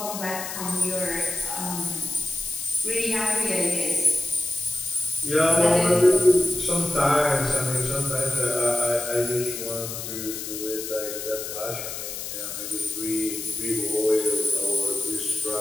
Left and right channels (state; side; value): noise; left; hiss, 7 dB below the sound